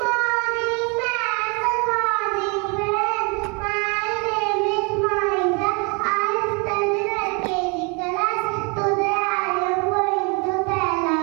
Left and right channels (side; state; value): left; quieter; 32.5 dB